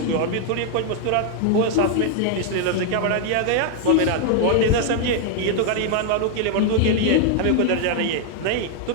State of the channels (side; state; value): both; different; correlation 0.00